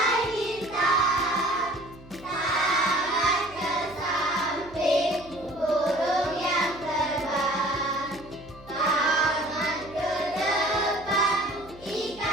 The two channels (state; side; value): noise; right; hum, 22 dB below the sound